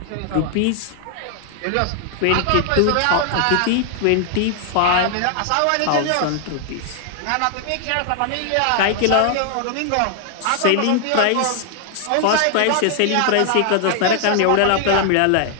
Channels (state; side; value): different; both; correlation 0.00